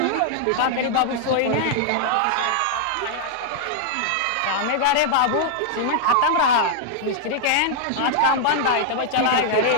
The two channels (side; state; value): both; different; correlation -0.01